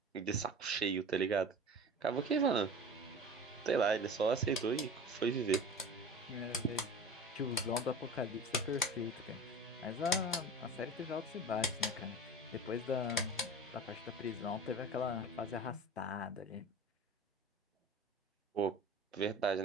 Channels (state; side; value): normal; both; correlation 0.36